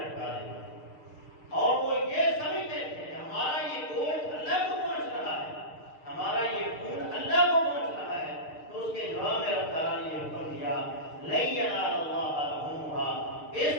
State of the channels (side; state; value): right; late; 6.6 ms